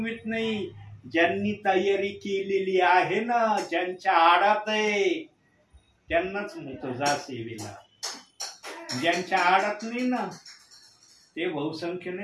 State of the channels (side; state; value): both; identical; correlation 1.00